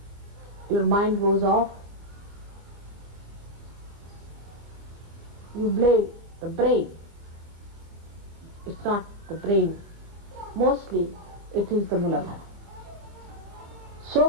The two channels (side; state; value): left; late; 25 ms